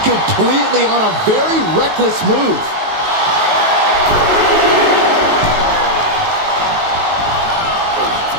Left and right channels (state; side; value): late; left; 19 ms